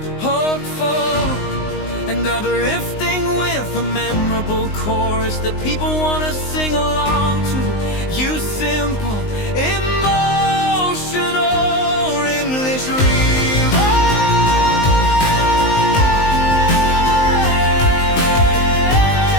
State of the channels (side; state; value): right; late; 19 ms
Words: hopeful, and uplifting, with a memorable chorus that people want to sing along to. You simple, emotional English